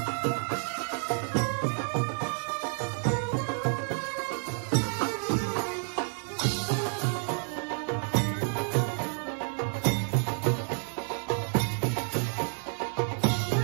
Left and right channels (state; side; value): silent; left; 58 dB below the other